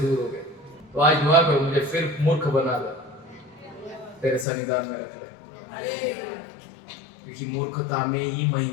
हो गए। तो आज दुआ करो मुझे फिर मूर्ख बना दो, तेरे सन्निधान में रख ले, क्योंकि मूर्खता में ही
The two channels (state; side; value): drops out; right; at 4.5 s